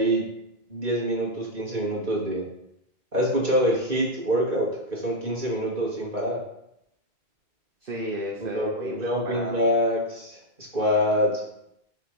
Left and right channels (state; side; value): late; left; 2.3 ms